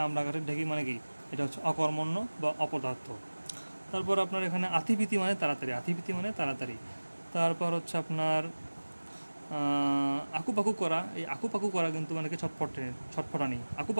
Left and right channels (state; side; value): inverted; both; correlation -1.00